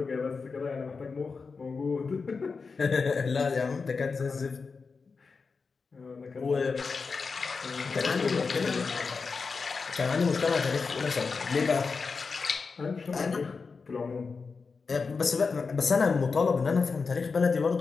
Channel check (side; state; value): right; quieter; 4.8 dB